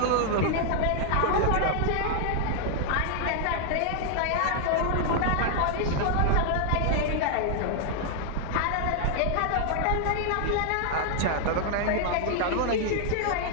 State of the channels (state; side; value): different; both; correlation 0.00